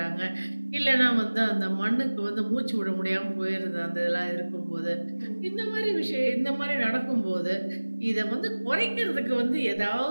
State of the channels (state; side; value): inverted; both; correlation -1.00